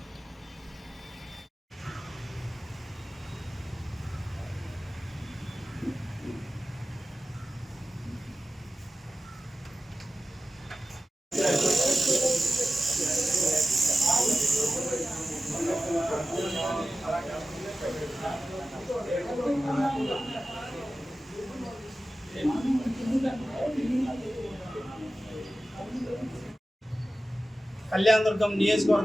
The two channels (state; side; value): normal; both; correlation 0.95